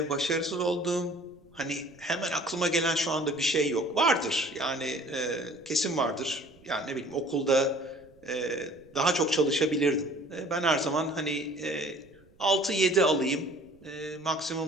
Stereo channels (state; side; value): noise; right; rumble, 29 dB below the sound